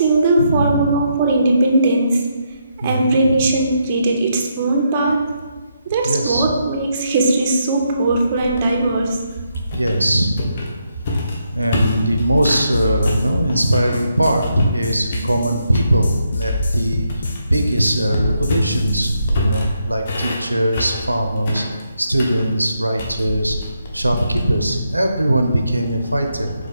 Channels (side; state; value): both; inverted; correlation -0.79